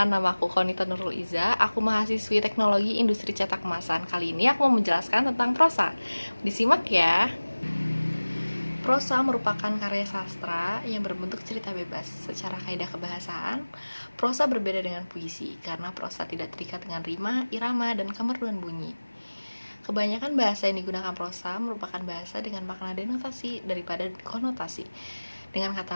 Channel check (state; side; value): inverted; both; correlation -1.00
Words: nama aku Konita Nurul Iza. Aku mahasiswi Teknologi Industri Cetak Kemasan. Kali ini aku mau menjelaskan tentang prosa. Disimak ya. Prosa merupakan karya sastra yang berbentuk cerita bebas. Secara kaidah kebahasaan, prosa berbeda dengan puisi karena prosa tidak terikat dengan rima, irama, dan kemerduan bunyi. Kebanyakan bahasa yang digunakan prosa merupakan bahasa dengan makna denotasi daripada konotasi. Dengan kata